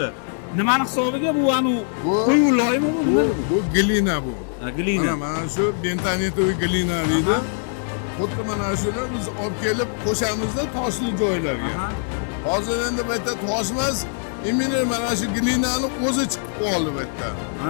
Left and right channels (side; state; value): right; silent; 64 dB below the other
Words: Nimani hisobiga bu anu qo'yu loymi bu? Bu glina bu. Ha, glina. Mana shu bentonitoviy glina deydi. Xuddi mana shuni biz olib kelib qo'shamizda toshli joylarga. Hozir endi bu yerda tosh emas, imini mana shu glinani o'zi chiqib qoldi bu yerda.